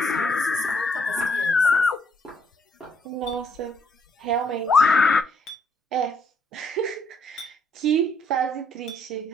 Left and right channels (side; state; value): both; normal; correlation 0.70